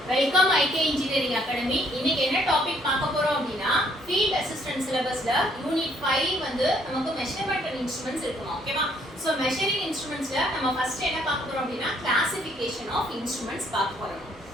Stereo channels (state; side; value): normal; both; correlation 0.66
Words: Welcome ஐகே engineering academy. இன்னைக்கு என்ன topic பார்க்க போறோம் அப்படின்னா ஃபீல்ட் அசிஸ்டன்ட் சிலபஸ்ல யூனிட் 5 வந்து நமக்கு மெஷர்மென்ட் அண்ட் இன்ஸ்ட்ருமெண்ட்ஸ் இருக்குமா. ஓகேவா? சோ மெஷரிங் இன்ஸ்ட்ருமெண்ட்ஸ்ல நம்ம ஃபர்ஸ்ட் என்ன பார்க்க போறோம் அப்படின்னா கிளாசிஃபிகேஷன் ஆஃப் இன்ஸ்ட்ருமெண்ட்ஸ் பார்க்க போறோம்.